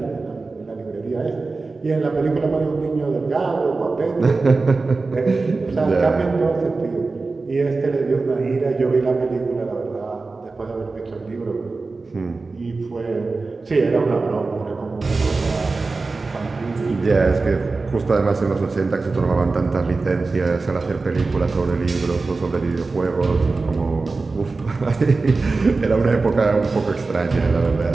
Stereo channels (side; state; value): left; quieter; 3.8 dB